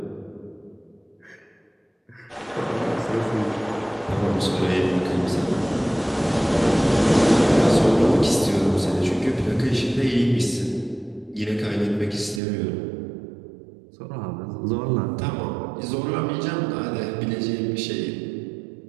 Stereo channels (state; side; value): drops out; left; at 12.4 s